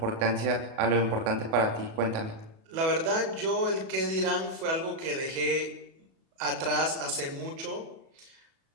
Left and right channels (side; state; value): left; late; 37 ms